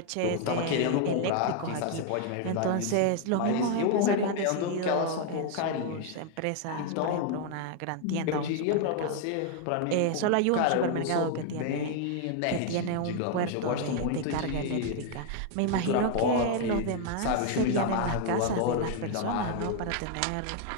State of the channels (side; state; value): both; different; correlation 0.00